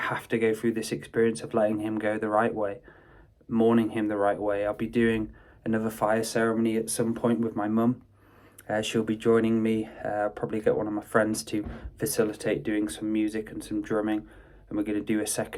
to go through this experience of letting him go the right way, mourning him the right way. I'll be doing another fire ceremony at some point with my mum. She'll be joining me. Probably get one of my friends to facilitate doing some music and some drumming. And we're going to do a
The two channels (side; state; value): both; identical; correlation 1.00